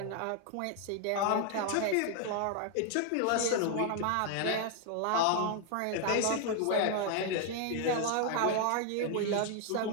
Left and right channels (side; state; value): both; different; correlation 0.00